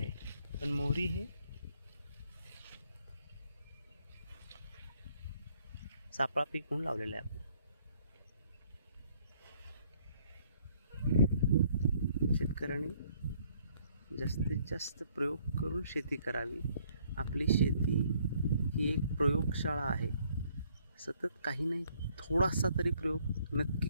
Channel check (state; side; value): inverted; both; correlation -0.65